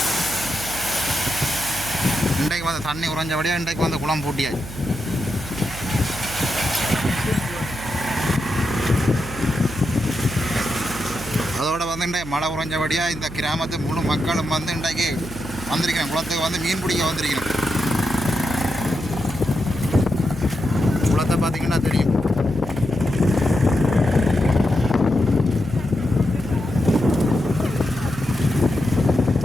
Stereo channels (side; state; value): right; noise; hum, 13 dB below the sound